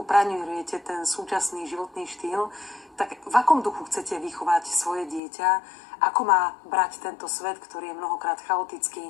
praňujete ten súčasný životný štýl, tak v akom duchu chcete vychovať svoje dieťa? Ako má brať tento svet, ktorý je mnohokrát chaotický,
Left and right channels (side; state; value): right; drops out; at 5.2 s